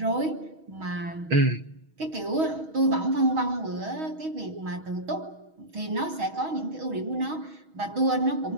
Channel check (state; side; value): late; left; 6.3 ms